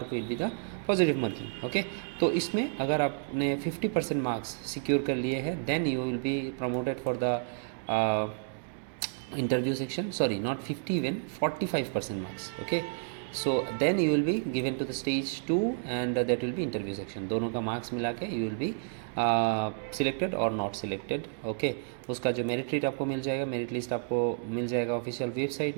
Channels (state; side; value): silent; left; digital silence